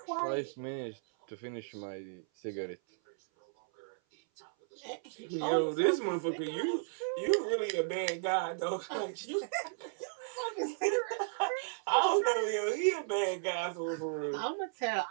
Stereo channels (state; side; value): silent; left; 55 dB below the other